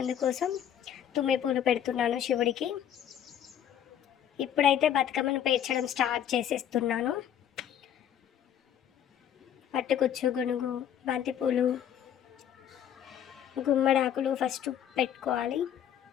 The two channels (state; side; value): quieter; right; 9.8 dB